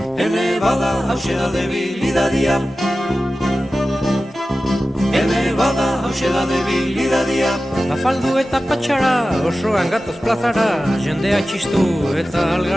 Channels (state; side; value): normal; both; correlation 0.95